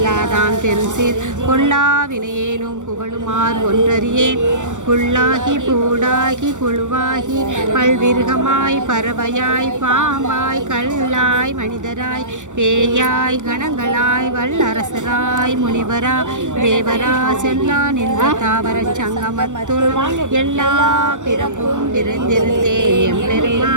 பெருசீர் கொல்லா வினையேனும் புகழுமார் ஒன்றறியேன் புல்லாகி பூடாகி புழுவாகி பல்விருகமாய் பறவையாய் பாம்பாய் கல்லாய் மனிதராய் பேயாய் கணங்களாய் வல்லரசராய் முனிவரா தேவரா செல்லா நின்ற தாவரச் சங்கமத்துள் எல்லா பிறப்பும் பிறந்திருந்தேன்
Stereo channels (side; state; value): left; late; 0.85 ms